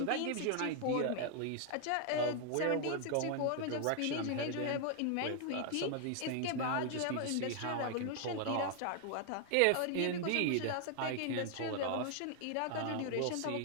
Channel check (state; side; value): different; both; correlation 0.00